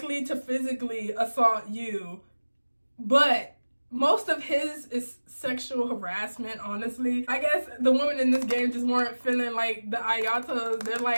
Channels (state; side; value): inverted; both; correlation -1.00